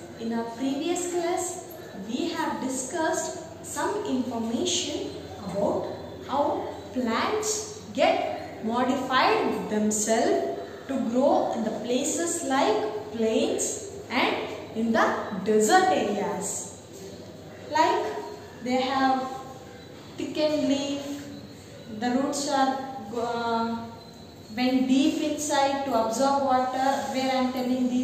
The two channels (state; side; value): identical; both; correlation 1.00